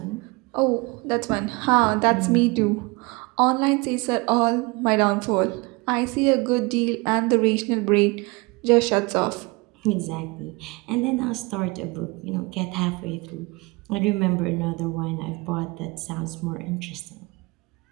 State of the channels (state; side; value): quieter; left; 25.9 dB